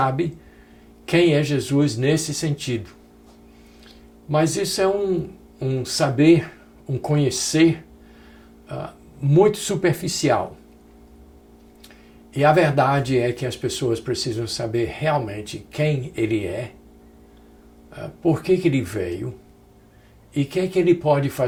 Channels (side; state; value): both; identical; correlation 1.00